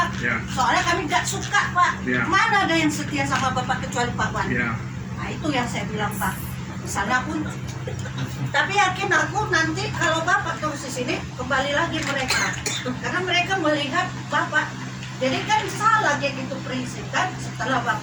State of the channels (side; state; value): both; identical; correlation 1.00